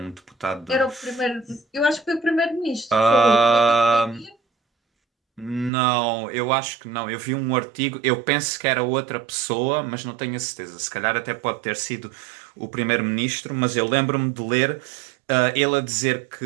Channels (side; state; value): left; drops out; at 5.7 s